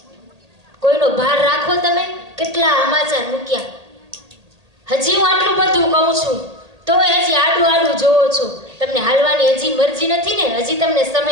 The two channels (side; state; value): left; late; 1.8 ms